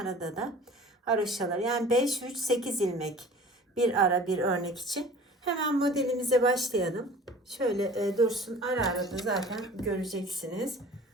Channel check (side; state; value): both; normal; correlation 0.44